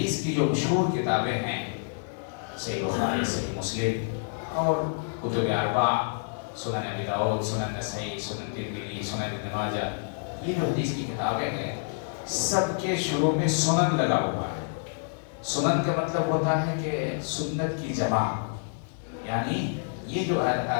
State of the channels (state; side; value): silent; right; 58 dB below the other